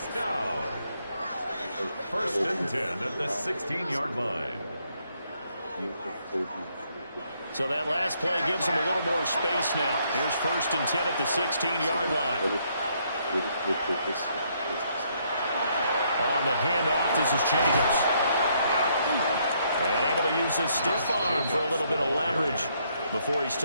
down. 1st and 10 at the 16-yard line. So that last play gives them a little more space now. Here's 1st and 10 at the 16-yard line. On the handoff, this is Jacobs. And able to use his stiff arm for a little bit of leverage before he's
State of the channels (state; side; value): inverted; both; correlation -0.71